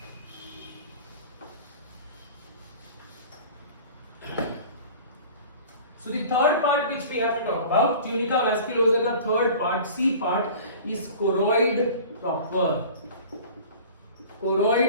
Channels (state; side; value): inverted; both; correlation -0.42